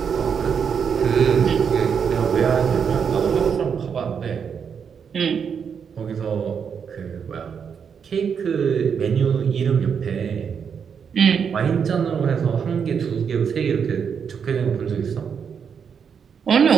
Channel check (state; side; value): quieter; left; 6.9 dB